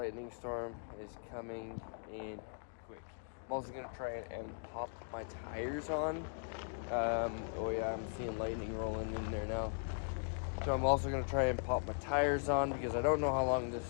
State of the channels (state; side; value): silent; right; digital silence